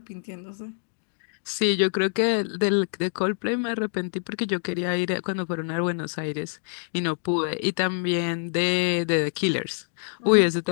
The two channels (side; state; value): right; silent; digital silence